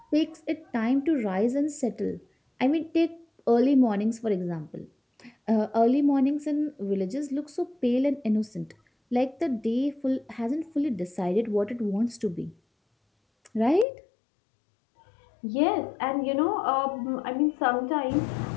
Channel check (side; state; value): right; drops out; at 13.9 s